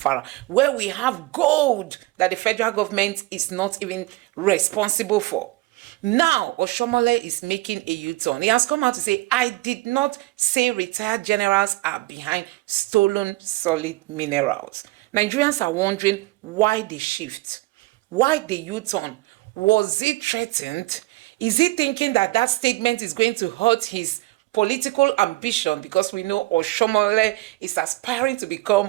where we have gold that the federal government is not even responsible for. Now, Oshiomhole is making a U-turn. He has come out to say, I did not say retired generals are behind stolen solid minerals. Nigerians are wondering why the shift, why the U-turn. Was he threatened? Is he thinking that that statement is going to hurt his political ambition? Because we know Oshiomhole is aspiring to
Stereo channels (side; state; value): left; quieter; 20.7 dB